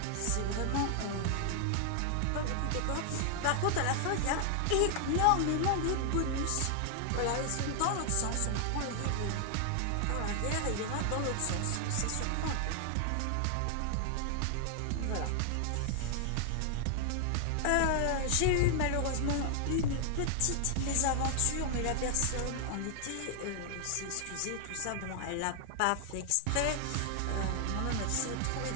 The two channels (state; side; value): different; both; correlation 0.00